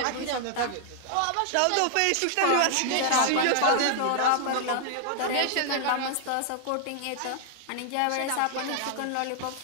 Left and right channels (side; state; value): both; different; correlation -0.01